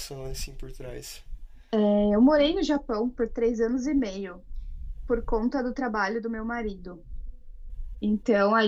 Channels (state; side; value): identical; both; correlation 1.00